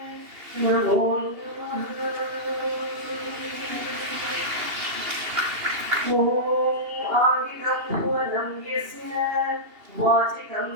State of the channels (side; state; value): left; late; 2.8 ms